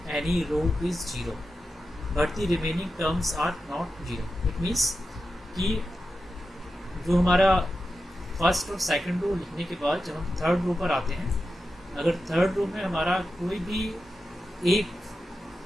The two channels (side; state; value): both; normal; correlation 0.91